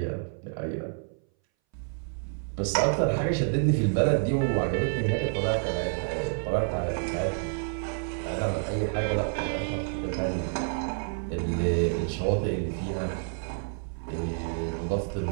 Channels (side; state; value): left; silent; 59 dB below the other